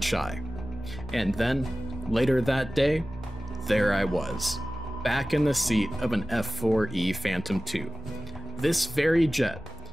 And then, later that day, there I was, back in the seat of an F-4E Phantom II. This very jet,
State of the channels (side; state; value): both; normal; correlation 0.96